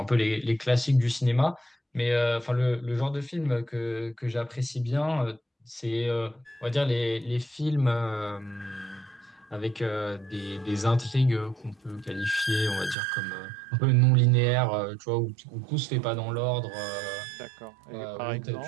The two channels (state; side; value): drops out; left; at 13.0 s